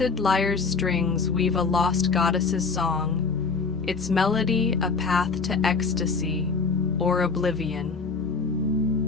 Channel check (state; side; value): quieter; right; 4.7 dB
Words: Lyre's strings weave a lost goddess's song, its melody a path to ecstasy or